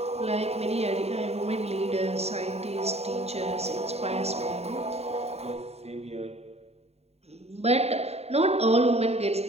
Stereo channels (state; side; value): late; left; 0.30 ms